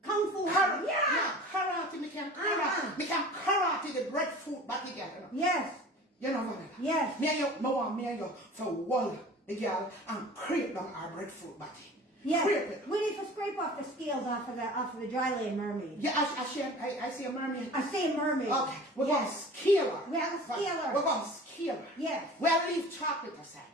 Kung Fu. Yeah, karate, me can karate. Me can karate the breadfruit back together. Yes. You know what? Yes. Me and you for wall the girl and create down our breadfruit batty. Yes. Create it. We need to scrape off the scales off of the dry lane mermaid. Yeah, I see a mermaid. I say mermaid. Okay, we're going to Yes. scale her. We have a scale her. We're going to scale her. Yes. We'll leave chocolate aside.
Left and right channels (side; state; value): both; normal; correlation 0.41